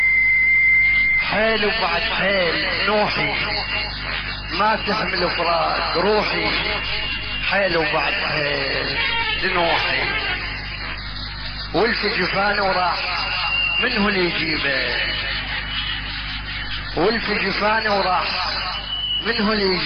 حيل وبعد حيل نوحي ما تحمل فراق روحي حيل وبعد حيل لنوحي والف جفانه وراح منه اللي يجيبه والف جفانه وراح منه اللي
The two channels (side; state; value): both; identical; correlation 1.00